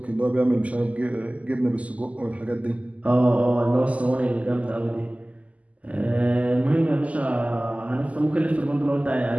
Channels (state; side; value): late; left; 0.069 ms